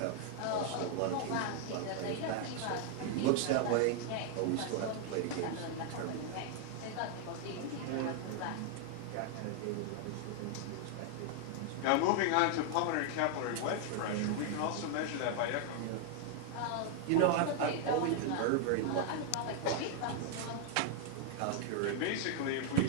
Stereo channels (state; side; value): different; both; correlation 0.00